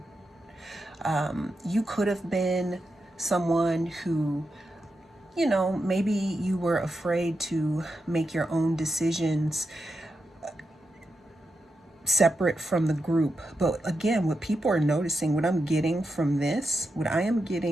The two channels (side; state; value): both; normal; correlation 0.87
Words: You could have been someone who, maybe you were afraid to make your own decisions separate from the group. But again, what people are noticing, what I am getting from this